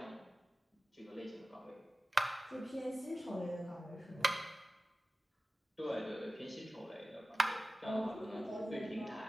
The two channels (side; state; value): both; normal; correlation 0.96